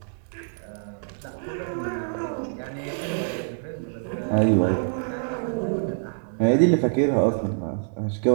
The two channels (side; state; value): left; silent; digital silence